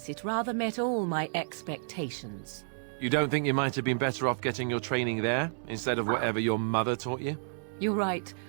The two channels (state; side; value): silent; left; digital silence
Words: it rather met all my expectations. You don't think you might have been better off getting your training there, instead of whatever your mother taught you? You're right.